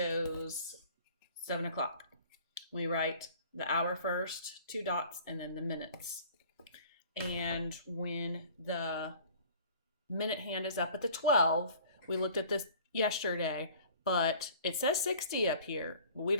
7 o'clock. We write the hour first, 2 dots, and then the minutes. And when the minute hand is up at the 12, we looked at this yesterday, but it says 60 up here. We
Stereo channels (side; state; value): both; inverted; correlation -0.48